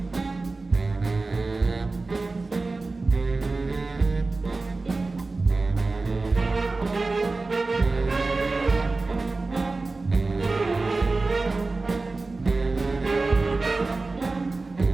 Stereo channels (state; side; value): quieter; left; 3.5 dB